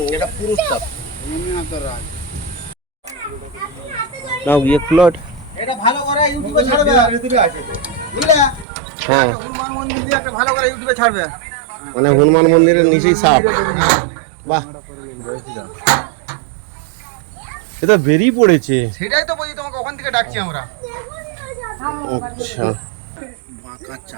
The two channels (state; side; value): drops out; left; at 8.7 s